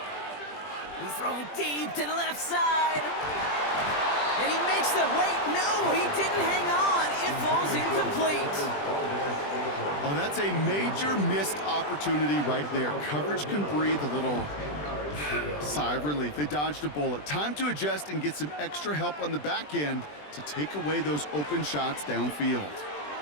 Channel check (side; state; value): right; late; 20 ms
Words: He's throwing deep to the left side. And he makes the, wait, no, he didn't hang on. It falls incomplete. Oh, that's a major missed opportunity right there. Coverage can breathe a little sigh of relief. They dodged a bullet. Time to adjust and get some extra help on the back end to take away those open shots downfield.